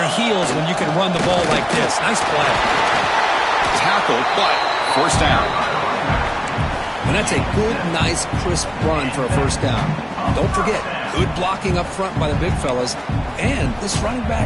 heels when you can run the ball like this. Nice play. Tackled, but first down. And that's a good, nice, crisp run for a first down. Don't forget, good blocking up front by the big fellas. And this running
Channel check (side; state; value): both; identical; correlation 1.00